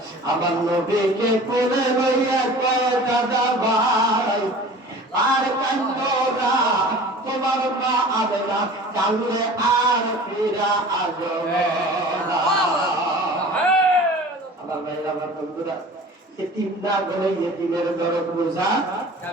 আমার নবীকে কোলে লইয়া কয়, দাদা ভাই আর কান্দো না, তোমার মা আমেনা কান্দলে আর ফিরা আসবে না। আমার ভাইরা আমার বন্ধুরা, এতিম না বলে এতিমের দরদ বোঝা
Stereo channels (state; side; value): normal; both; correlation 0.42